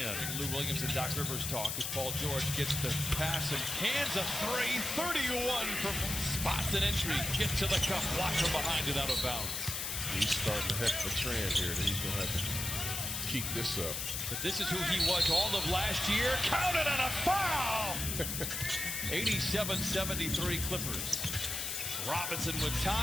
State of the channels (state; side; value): noise; left; hiss, 3 dB below the sound